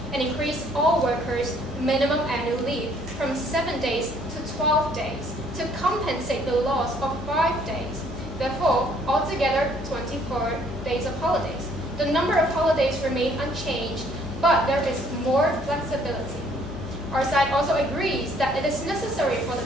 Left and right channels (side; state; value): both; normal; correlation 0.62